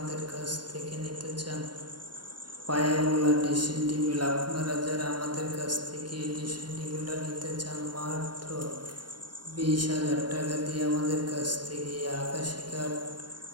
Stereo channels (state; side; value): late; left; 0.71 ms